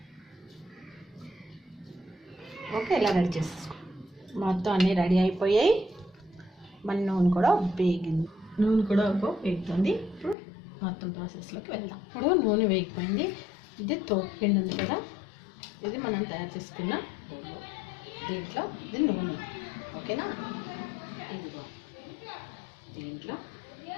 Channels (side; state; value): right; drops out; at 10.4 s